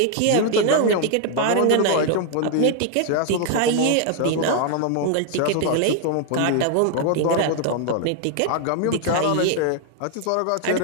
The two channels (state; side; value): different; both; correlation 0.00